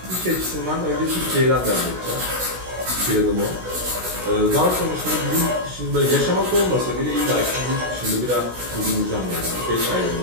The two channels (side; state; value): left; late; 16 ms